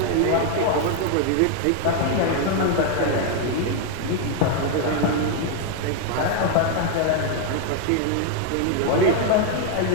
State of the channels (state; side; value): different; both; correlation 0.00